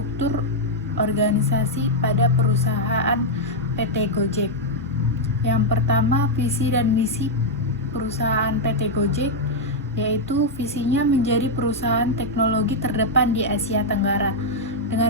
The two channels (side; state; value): both; normal; correlation -0.02